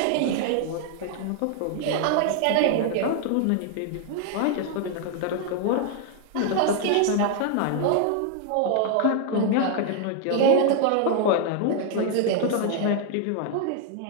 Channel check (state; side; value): different; both; correlation 0.00